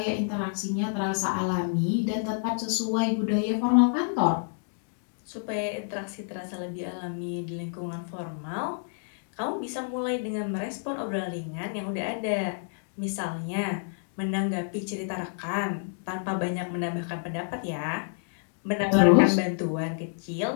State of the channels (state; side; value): silent; right; digital silence